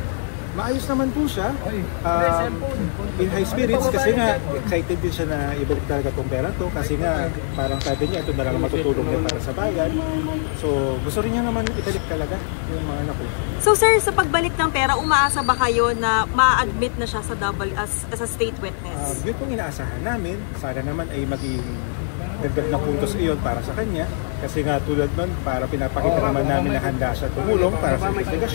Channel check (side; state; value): right; silent; digital silence